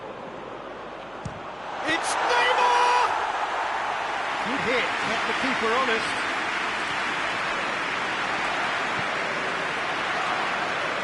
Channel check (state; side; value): noise; right; hum, 28 dB below the sound